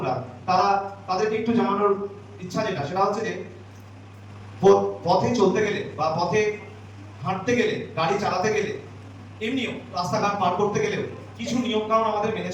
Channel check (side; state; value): both; identical; correlation 1.00